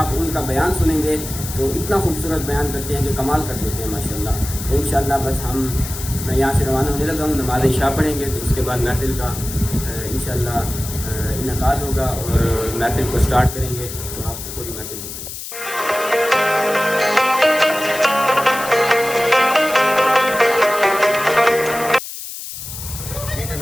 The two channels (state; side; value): noise; left; hiss, 9 dB below the sound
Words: آپ ان کا بیان سنیں گے تو اتنا خوبصورت بیان کرتے ہیں کہ کمال کر دیتے ہیں ماشاءاللہ۔ تو انشاءاللہ بس میں یہاں سے روانہ ہونے لگا ہوں، نماز عشاء پڑھیں گے تو اس کے بعد محفل کا انشاءاللہ انعقاد ہوگا اور محفل کو سٹارٹ کریں گے، تو آپ کو پوری محفل دکھائیں گے۔